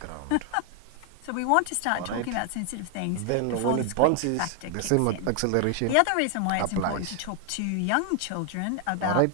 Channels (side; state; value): both; different; correlation 0.00